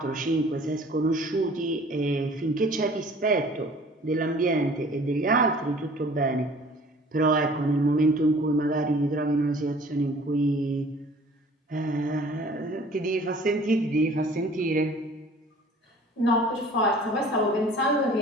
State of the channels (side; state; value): both; normal; correlation 0.50